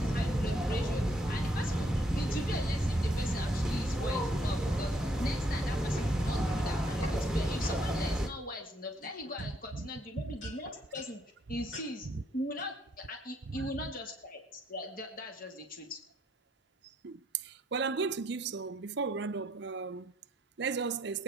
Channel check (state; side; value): normal; both; correlation 0.70